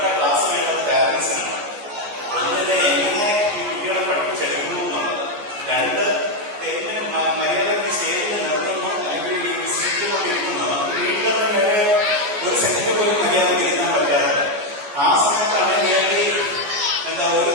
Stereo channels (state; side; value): late; left; 14 ms